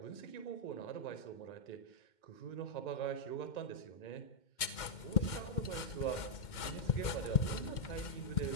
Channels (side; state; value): right; late; 2.1 ms